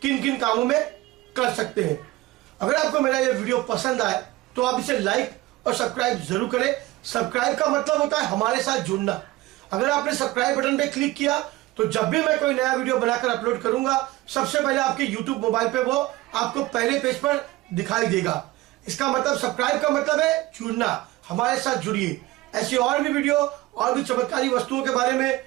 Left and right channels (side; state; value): left; quieter; 18.2 dB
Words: किन किन कामों में कर सकते हैं। अगर आपको मेरा ये वीडियो पसंद आए तो आप इसे लाइक और सब्सक्राइब जरूर करें। सब्सक्राइब का मतलब होता है हमारे साथ जुड़ना। अगर आपने सब्सक्राइब बटन पे क्लिक किया तो जब भी मैं कोई नया वीडियो बनाकर अपलोड करूंगा सबसे पहले आपके YouTube मोबाइल पे वो आपको पहले पेज पर दिखाई देगा। इसका मतलब सब्सक्राइब का मतलब है जुड़ना, हमारे साथ जुड़िए। ऐसी और भी वीडियो और भी चमत्कारी वस्तुओं के बारे में